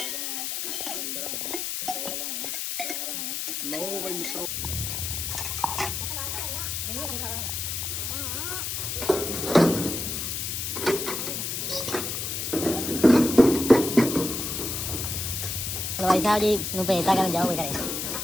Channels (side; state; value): left; noise; hiss, 3 dB below the sound